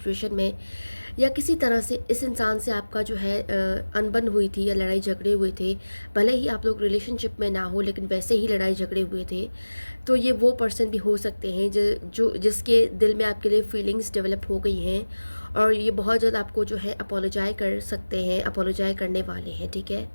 में, या किसी तरह से इस इंसान से आपका जो है अनबन हुई थी या लड़ाई झगड़े हुए थे, भले ही आप लोग रिलेशनशिप में ना हो, लेकिन वैसे ही लड़ाई झगड़े हुए थे, तो ये वो पर्सन भी हो सकते हैं जिसके दिल में आपके लिए फीलिंग्स डेवलप हो गई हैं, और ये बहुत जल्द आपको जो है अपोलोजाइज कर सकते हैं, अपोलोजाइज करने वाले हैं। ठीक है,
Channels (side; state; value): both; inverted; correlation -1.00